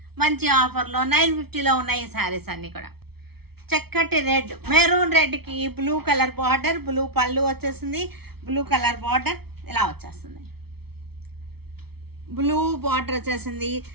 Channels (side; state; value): left; late; 0.96 ms